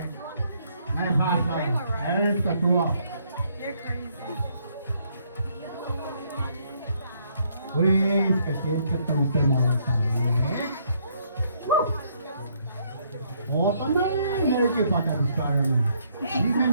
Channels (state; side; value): inverted; both; correlation -0.69